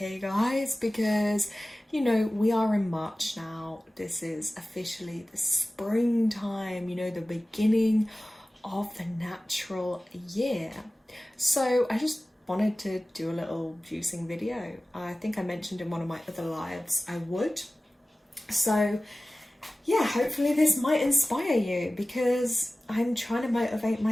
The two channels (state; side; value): normal; both; correlation 0.97